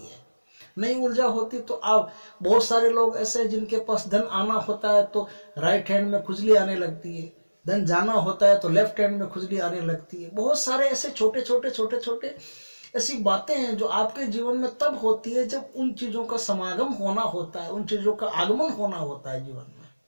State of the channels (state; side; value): inverted; both; correlation -1.00